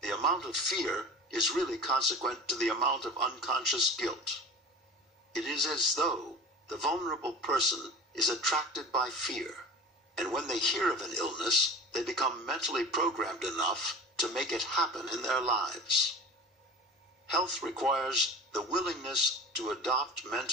The amount of fear is really consequent to the amount of unconscious guilt. It is as though the vulnerable person is attracted by fear, and when they hear of an illness, they become mentally programmed enough to make it happen in their lives. Health requires the willingness to adopt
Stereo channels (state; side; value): normal; both; correlation 0.36